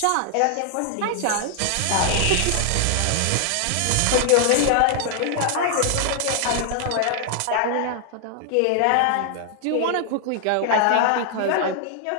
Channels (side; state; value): both; different; correlation 0.00